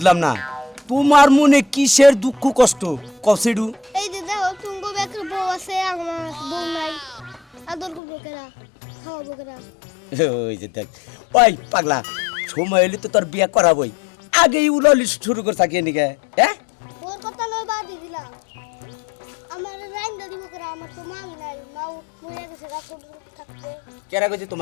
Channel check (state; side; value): drops out; right; at 8.0 s